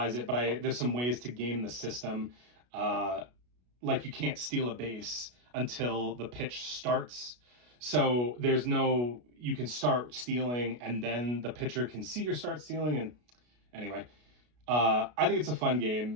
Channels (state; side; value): late; left; 33 ms